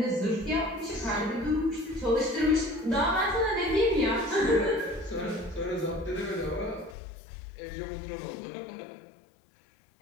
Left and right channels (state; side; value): drops out; right; at 7.0 s